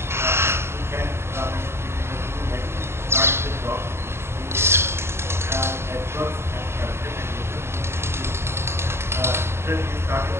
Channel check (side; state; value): left; late; 0.12 ms